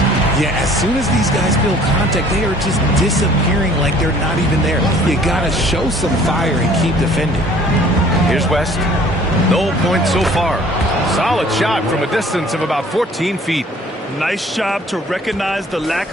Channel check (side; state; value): both; normal; correlation 0.53